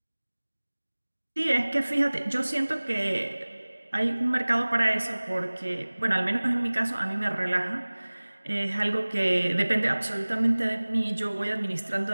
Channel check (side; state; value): both; inverted; correlation -1.00